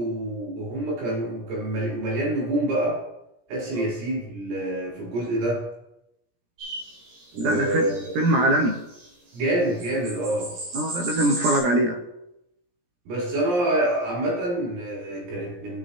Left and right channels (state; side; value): late; left; 17 ms